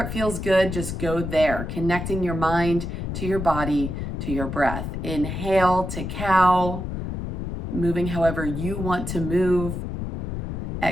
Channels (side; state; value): left; noise; rumble, 4 dB below the sound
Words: feels good, just go there, connecting your mind to your body, to your breath. Inhale to cow, moving however you want to move.